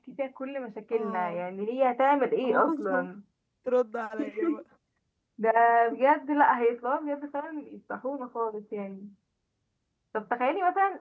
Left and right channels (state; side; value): identical; both; correlation 1.00